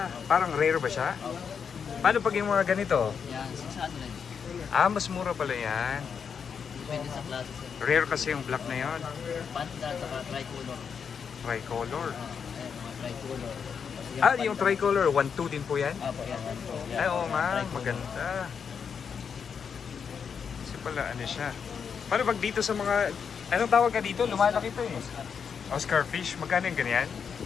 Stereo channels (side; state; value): right; quieter; 6.7 dB